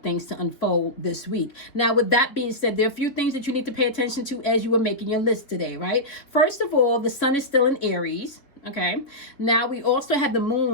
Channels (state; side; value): late; right; 3.5 ms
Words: things to unfold this week. Now, with that being said, there are a few things that you need to pay attention to as you are making your list today, right? First of all, the sun is still in Aries. Okay, now we also have the